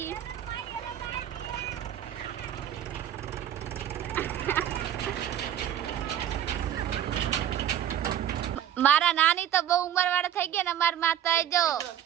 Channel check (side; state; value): left; quieter; 10.8 dB